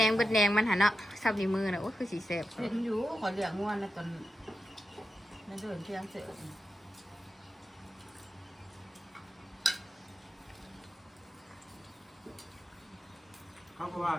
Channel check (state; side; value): normal; both; correlation 0.89